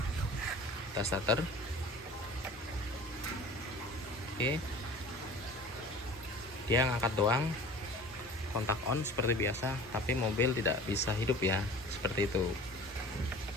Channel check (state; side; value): normal; both; correlation 0.42